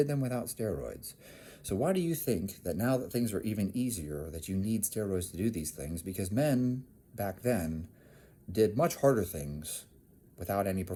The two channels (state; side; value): identical; both; correlation 1.00